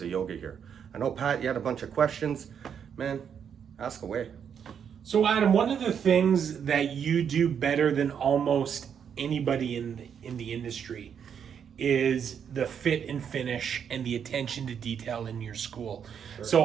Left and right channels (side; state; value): left; quieter; 7.8 dB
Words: of yoga here. I know, Pat, you had a bunch of questions. Man, ask away. So Adam, one of the things that you do better than almost anybody in the industry is the fit and finish and the attention to detail in your school. Sure. So